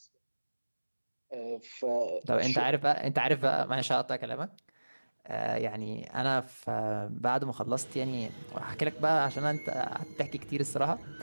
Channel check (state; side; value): inverted; both; correlation -1.00